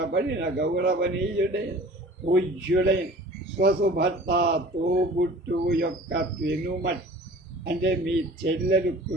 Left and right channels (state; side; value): normal; both; correlation 0.45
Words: గౌరవనీయుడైన పూజ్యుడైన స్వసుభర్త తోబుట్టువు యొక్క పెనుమట్ అంటే మీ చెల్లెలు